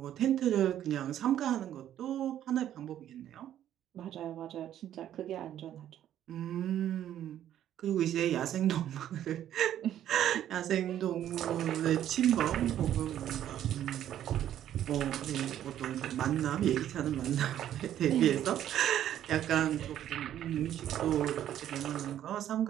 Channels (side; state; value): left; quieter; 11.2 dB